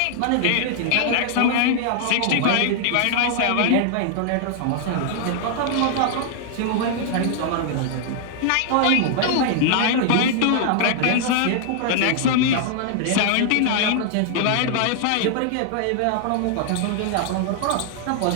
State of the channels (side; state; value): both; different; correlation -0.01